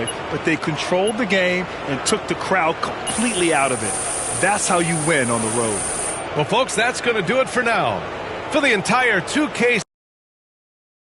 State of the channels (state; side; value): identical; both; correlation 1.00